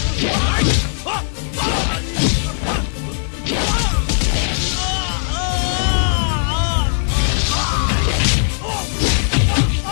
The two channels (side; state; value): right; silent; digital silence